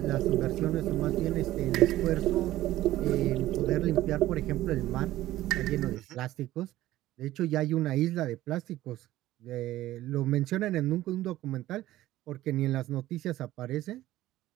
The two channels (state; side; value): quieter; left; 15.2 dB